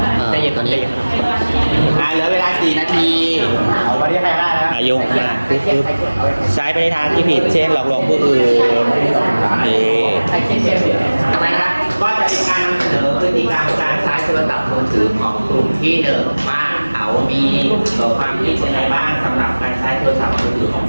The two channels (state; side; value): inverted; both; correlation -1.00